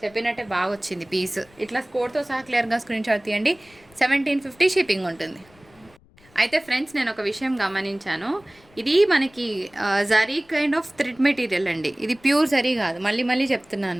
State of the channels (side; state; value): left; noise; rumble, 29 dB below the sound